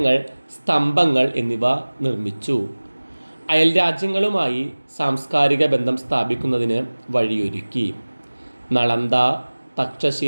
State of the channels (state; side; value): inverted; both; correlation -1.00